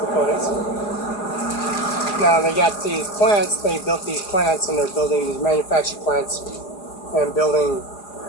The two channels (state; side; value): late; right; 4.8 ms